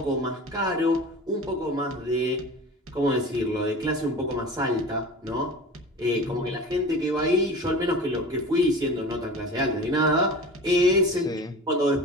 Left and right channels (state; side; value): normal; both; correlation 0.36